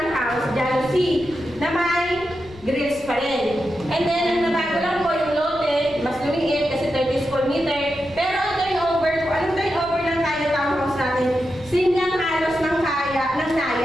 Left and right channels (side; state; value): left; noise; rumble, 21 dB below the sound